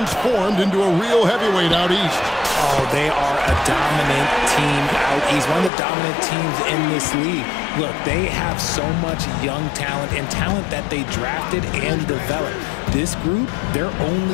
into a real heavyweight out east. Oh, they are a dominant team out east. One of the dominant teams in this league. Look, they have so much young talent and talent that they drafted and developed. This group, their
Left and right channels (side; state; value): right; drops out; at 5.7 s